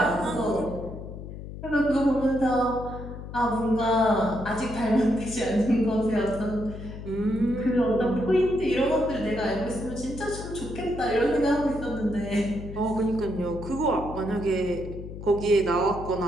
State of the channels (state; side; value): noise; left; hum, 11 dB below the sound